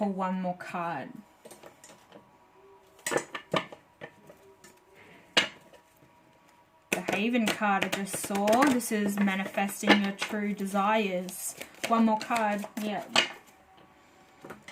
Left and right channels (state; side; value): identical; both; correlation 1.00